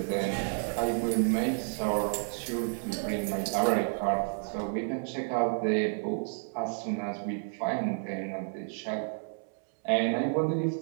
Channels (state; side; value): silent; left; 57 dB below the other